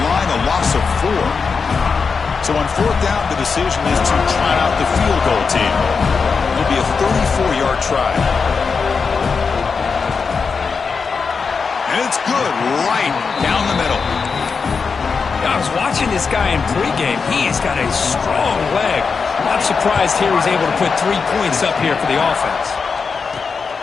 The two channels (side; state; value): right; quieter; 5.2 dB